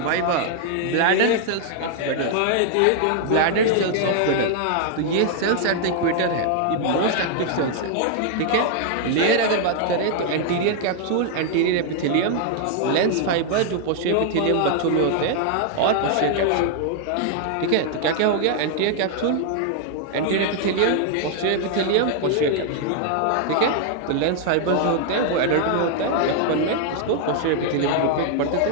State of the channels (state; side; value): different; both; correlation 0.00